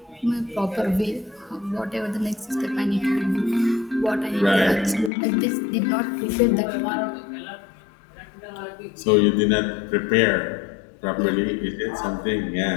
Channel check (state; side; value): drops out; right; at 5.1 s